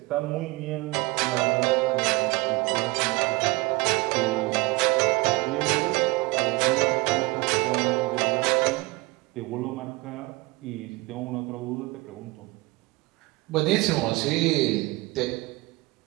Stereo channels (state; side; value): quieter; left; 23.4 dB